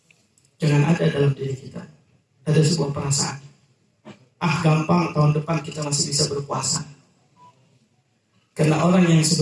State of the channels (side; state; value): both; identical; correlation 1.00